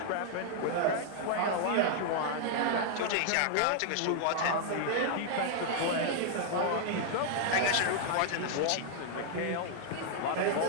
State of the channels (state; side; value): different; both; correlation 0.00